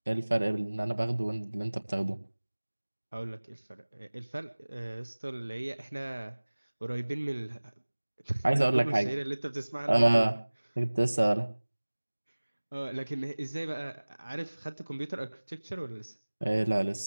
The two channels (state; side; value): inverted; both; correlation -1.00